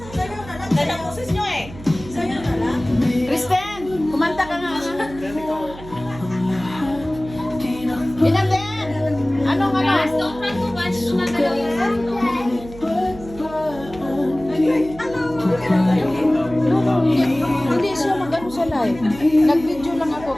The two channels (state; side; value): noise; right; hum, 16 dB below the sound